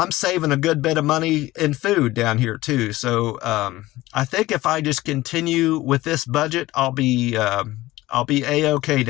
saving a good bit of money in food down here too. So I think if I just continue with this budget, I'll be a-okay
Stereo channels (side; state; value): right; quieter; 17.8 dB